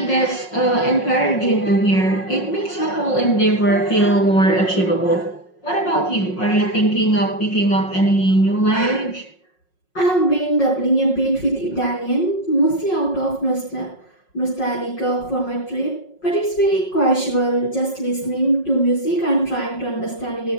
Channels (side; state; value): right; late; 5.5 ms